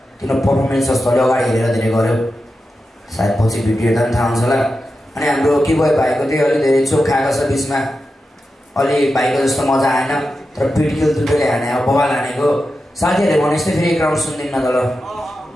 तिम्रो पर्फर्मेन्स जस्तो अलि अगाडि हेरेर धेरै गऱ्यो सायद पछि भिडियो हेर्दा पनि थाहा हुन्छ होला अनि हाम्रो के भयो भाइको त्यही अलिक धेरै चोक खाएको छ बिचमा अलि भाइको जस्तो मजा आएन तर पिडकिल दुईले हाने अब बबाल हानेको साथीहरूले भने जस्तै फेरि एक राउन्ड सुन्दिनँ त ल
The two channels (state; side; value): normal; both; correlation 0.90